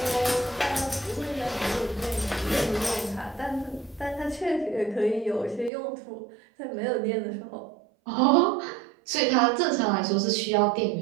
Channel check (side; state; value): left; drops out; at 5.7 s